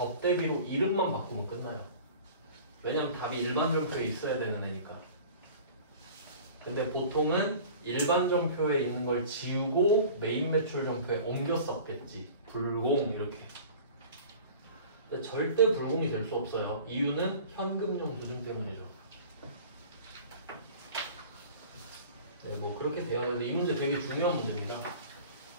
이름만 바꾸면 끝나요. 왜냐면 답이 일반 전표에 있어야 되는 애니까. 근데 보통은 일반 전표에 있는 걸 지우고 메인 매출 전표에 옮겨 썼겠지. 불공 이렇게. 근데 절대 불공이 될 수 없어요. 이유는 현금용 수준 때문이죠. 네, 뭐 그렇게 돼요. 근데 이 문제 되게 중요한 문제입니다.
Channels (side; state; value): both; inverted; correlation -0.43